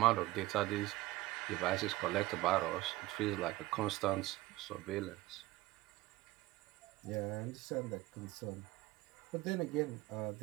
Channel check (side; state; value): left; quieter; 18.4 dB